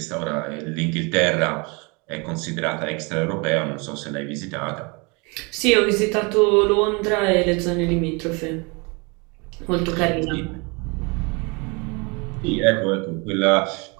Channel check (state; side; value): quieter; left; 29.7 dB